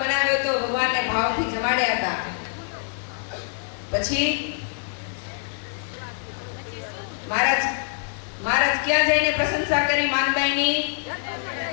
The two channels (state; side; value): silent; right; digital silence